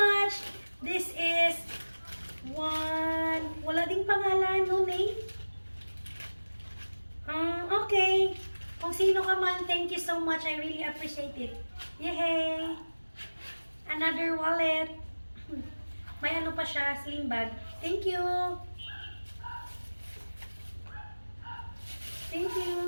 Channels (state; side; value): inverted; both; correlation -1.00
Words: This is one. Wala ding pangalan, no name? Okay. Kung sino ka man, thank you so much. I really appreciate it. Yay! Another wallet. May ano pa siya, sling bag. Thank you. Thank